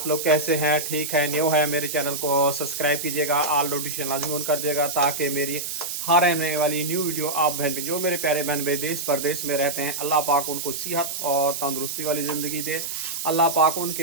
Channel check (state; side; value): noise; right; hiss, 5 dB below the sound